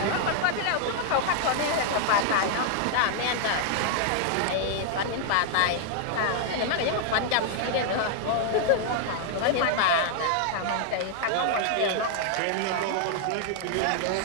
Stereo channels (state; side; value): different; both; correlation 0.00